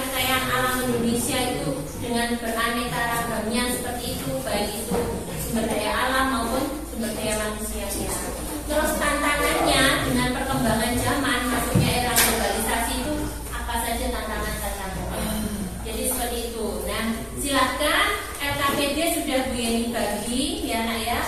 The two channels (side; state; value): both; identical; correlation 1.00